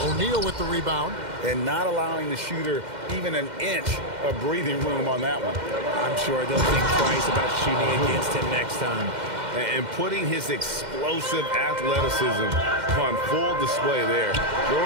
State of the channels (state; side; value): late; left; 2.1 ms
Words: O'Neal with the rebound. And not allowing the shooter even an inch of breathing room on that one. I'm sure they'll think twice about shooting against him next time. And putting his explosive athleticism on full display there.